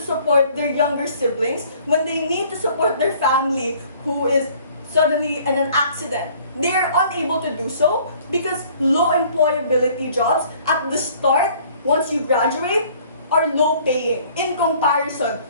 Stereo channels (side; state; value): both; inverted; correlation -0.56